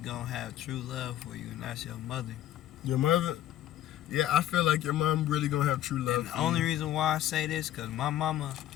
have true love for you, and that's your mother. Your mother? Yeah, I feel like your mom really gonna have true love And the for only you. reason why I say this, cause my mama,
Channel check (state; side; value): quieter; right; 12.7 dB